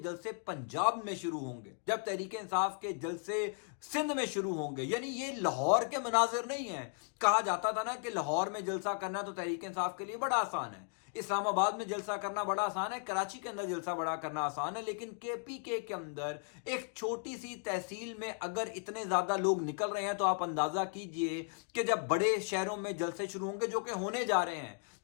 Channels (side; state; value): right; silent; 54 dB below the other